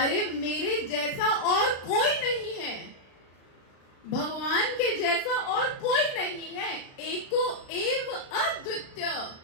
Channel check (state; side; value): late; right; 36 ms